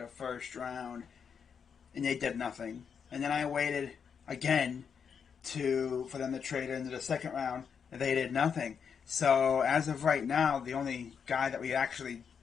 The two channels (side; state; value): right; quieter; 6.8 dB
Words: first round, and they did nothing. And then I waited again for them to trade into the second round, and they did nothing. So as of right now, the only guy that we actually,